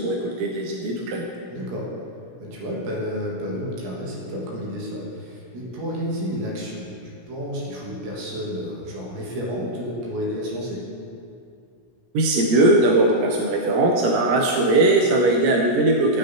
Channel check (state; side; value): late; left; 17 ms